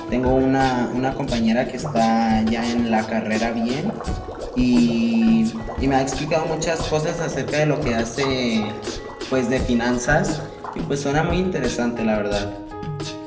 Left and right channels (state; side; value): identical; both; correlation 1.00